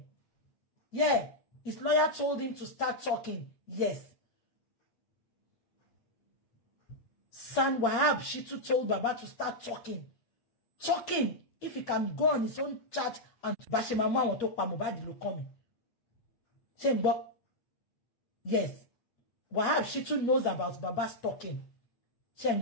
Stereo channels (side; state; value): right; late; 8.5 ms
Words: yeah his lawyer told him to start talking yes San Wahab Shitu told baba to start talking if he can go on his own chat and bashe mama won to pa Mohbad ló kàn mí ṣé ń gbọ́ yes Wahab Shitu knows about baba's talking ṣé ń